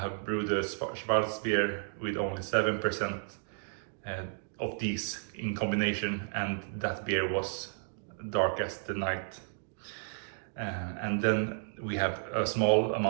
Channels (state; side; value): silent; left; digital silence